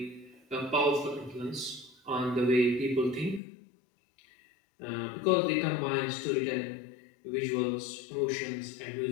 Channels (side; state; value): right; drops out; at 3.4 s